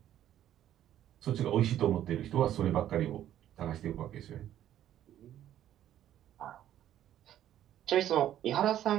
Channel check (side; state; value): left; quieter; 11.6 dB